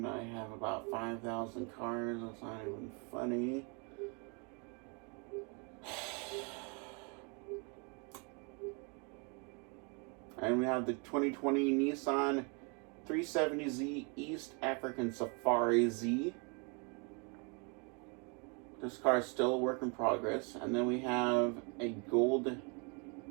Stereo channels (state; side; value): quieter; left; 34.4 dB